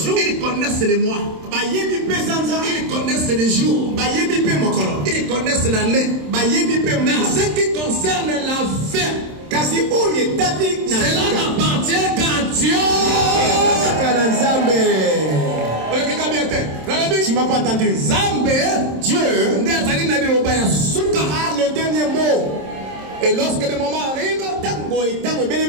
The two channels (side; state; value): left; late; 27 ms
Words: Ils connaissent les mois. Ils connaissent les jours. Ils connaissent l'année. Ce qui concerne la fin, cela n'appartient qu'à Dieu. Tu m'as pas entendu. Dieu, le dernier mot. Et lorsque le moment arrive,